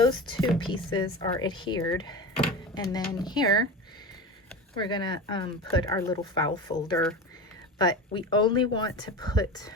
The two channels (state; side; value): normal; both; correlation 0.28